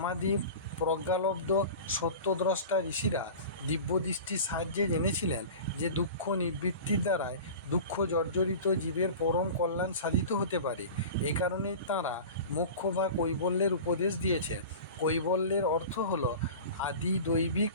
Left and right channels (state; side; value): inverted; both; correlation -0.35